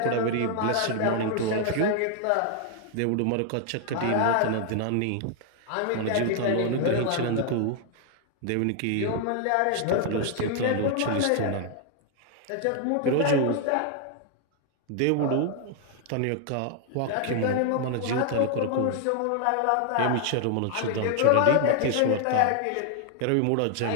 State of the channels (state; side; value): different; both; correlation 0.00